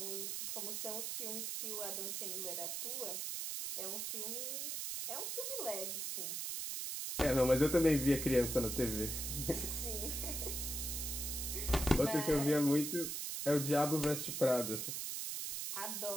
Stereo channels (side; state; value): right; noise; hiss, 3 dB below the sound